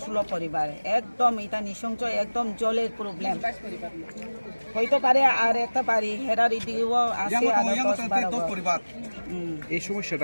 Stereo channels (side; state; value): both; inverted; correlation -1.00